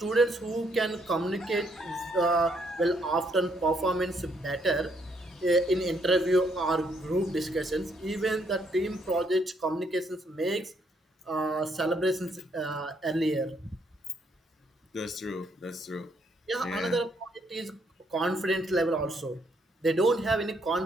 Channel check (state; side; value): normal; both; correlation 0.71